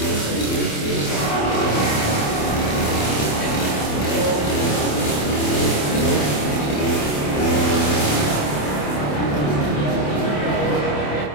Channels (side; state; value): right; late; 27 ms